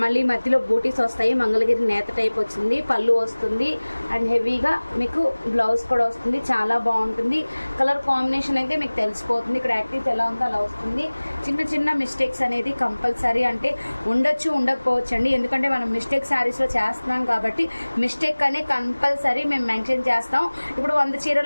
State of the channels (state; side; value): inverted; both; correlation -1.00